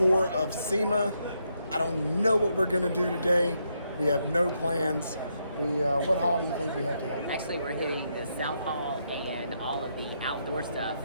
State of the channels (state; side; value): inverted; both; correlation -0.78